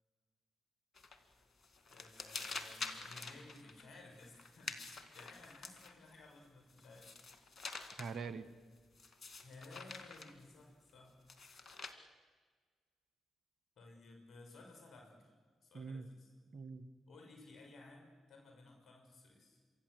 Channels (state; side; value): normal; both; correlation 0.77